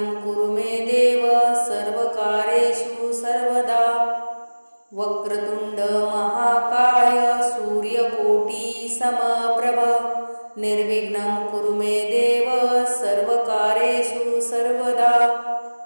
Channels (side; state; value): both; inverted; correlation -1.00